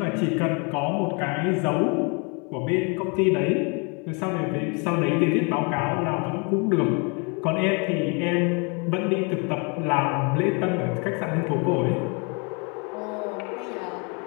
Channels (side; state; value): right; quieter; 33.2 dB